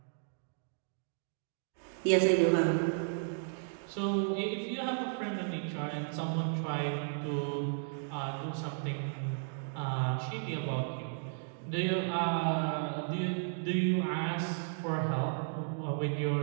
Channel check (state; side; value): silent; left; digital silence